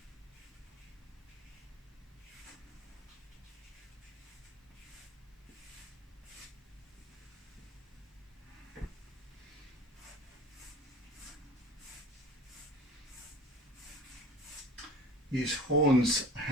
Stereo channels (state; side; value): normal; both; correlation 0.41